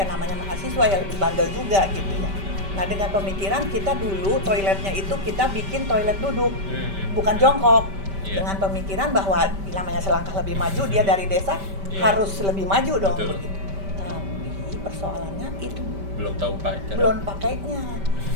namanya mahasiswa ya lebih bandel juga gitu ya. Nah dengan pemikiran kita dulu toiletnya itu kita bikin toilet duduk, bukan jongkok. Dengan pemikiran bahwa namanya selangkah lebih maju, dia dari desa harus lebih maju dong. Begitu. Tapi persoalannya itu belum pakainya.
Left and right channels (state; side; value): late; left; 5.1 ms